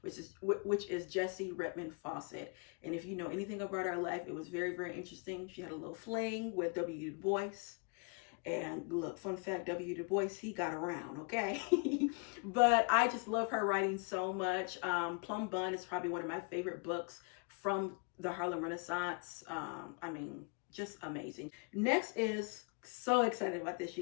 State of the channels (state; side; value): quieter; right; 34.5 dB